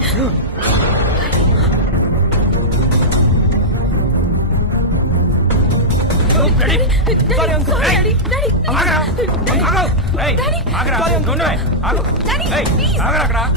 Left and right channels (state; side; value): normal; both; correlation -0.11